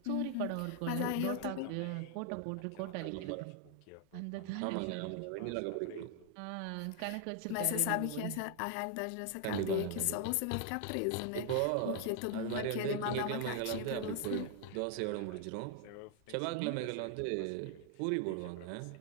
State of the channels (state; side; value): different; both; correlation 0.00